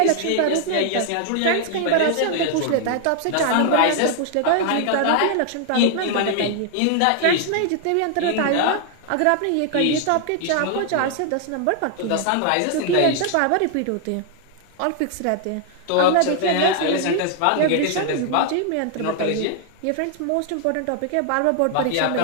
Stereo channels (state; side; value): different; both; correlation 0.00